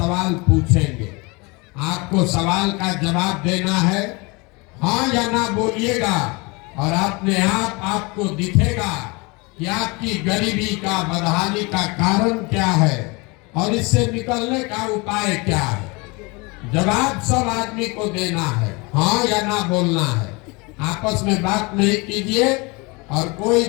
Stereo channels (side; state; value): right; quieter; 27.3 dB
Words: पूछेंगे। आपको सवाल का जवाब देना है, हाँ या ना बोलिएगा, और अपने आप आपको दिखेगा कि आपकी गरीबी का, बदहाली का कारण क्या है और इससे निकलने का उपाय क्या है। जवाब सब आदमी को देना है, हाँ या ना बोलना है। आपस में बात नहीं कीजिए और कोई